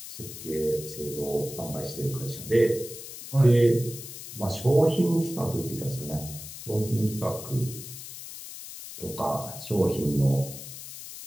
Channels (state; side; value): noise; left; hiss, 12 dB below the sound